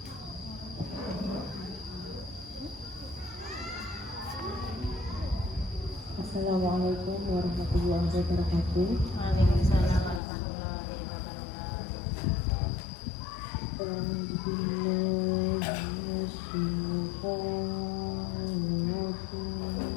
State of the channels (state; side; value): drops out; right; at 10.2 s